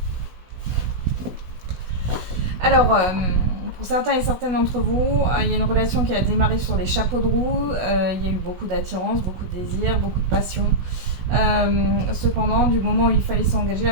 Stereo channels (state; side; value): late; left; 16 ms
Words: Alors, pour certains et certaines d'entre vous, il y a une relation qui a démarré sur les chapeaux de roue. Il y a eu beaucoup d'attirance, beaucoup de désir, beaucoup de passion. Cependant, du moment où il fallait s'engager, la